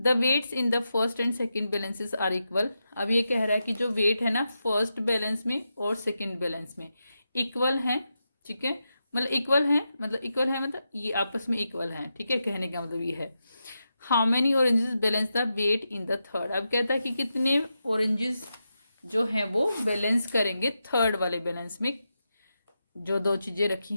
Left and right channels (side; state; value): both; inverted; correlation -0.88